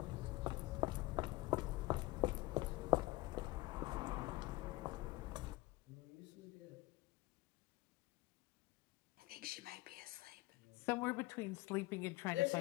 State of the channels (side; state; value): right; quieter; 19.8 dB